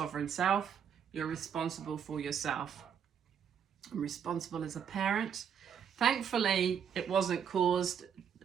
self. You're responsible for yourself. I'm responsible as a parent. Thankfully, it wasn't caused,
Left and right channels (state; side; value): quieter; left; 7.8 dB